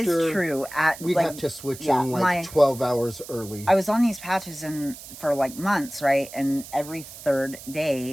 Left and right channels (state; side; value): noise; right; hiss, 15 dB below the sound